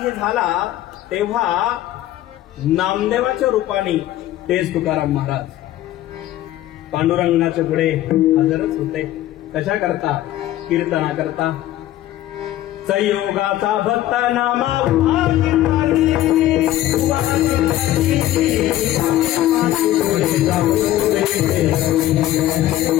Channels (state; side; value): quieter; right; 14.0 dB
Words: झाला तेव्हा नामदेवाच्या रूपाने तेच तुकाराम महाराज पांडुरंगाच्या पुढे हजरच होते. कशा करता? कीर्तना करता. संयोगाचा भक्त नामा